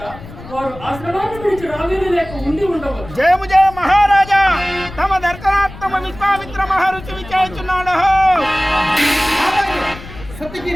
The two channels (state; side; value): noise; left; rumble, 15 dB below the sound